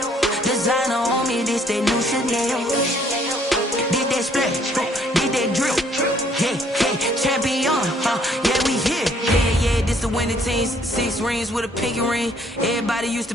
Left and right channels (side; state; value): both; normal; correlation 0.64